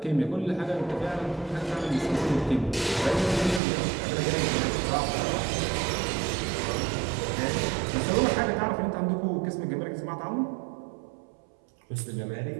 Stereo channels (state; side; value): drops out; left; at 3.6 s